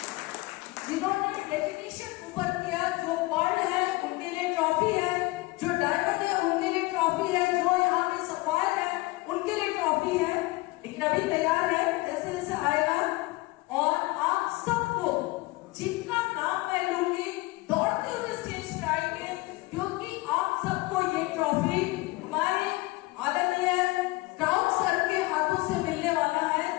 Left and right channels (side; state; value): right; quieter; 22.1 dB